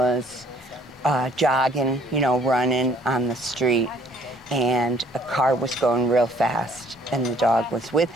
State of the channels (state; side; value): normal; both; correlation 0.60